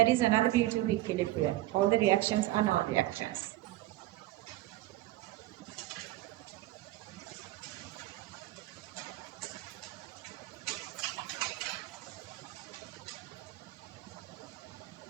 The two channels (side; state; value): left; quieter; 16.6 dB